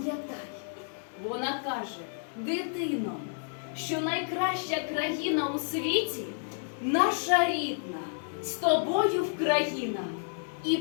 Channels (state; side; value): silent; right; 57 dB below the other